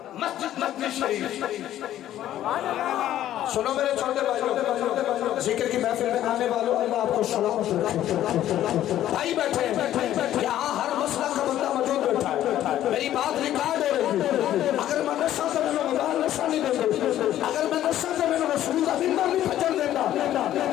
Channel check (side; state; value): right; quieter; 12.4 dB